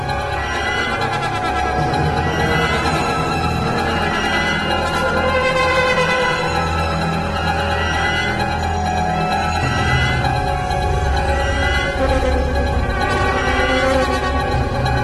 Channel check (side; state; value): both; identical; correlation 1.00